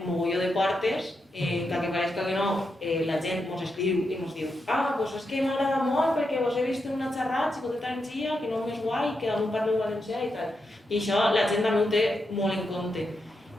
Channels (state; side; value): normal; both; correlation 0.85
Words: mogolló de portes, que pareixca que no, la gent ens escriu i ens diu doncs és que m'agrada molt perquè vos he vist en una xerrada, Xicoteta Energia, que no és guai, que damunt parleu valencià i tal. I això la gent també ho té molt en compte.